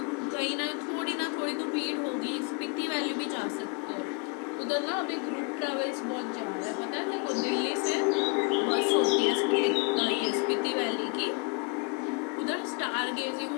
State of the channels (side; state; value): right; quieter; 33.3 dB